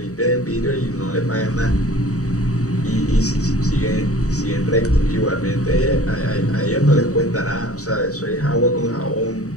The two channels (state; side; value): late; right; 0.66 ms